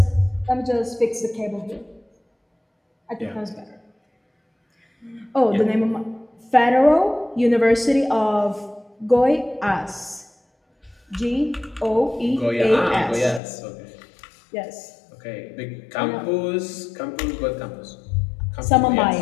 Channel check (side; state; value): right; drops out; at 13.4 s